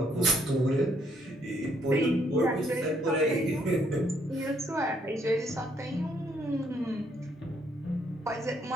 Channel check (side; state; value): both; normal; correlation 0.69